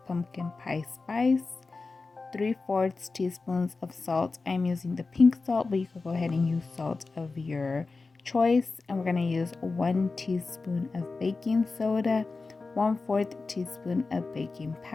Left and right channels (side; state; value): right; quieter; 3.9 dB